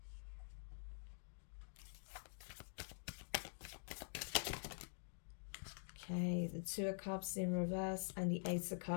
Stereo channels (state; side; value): silent; right; digital silence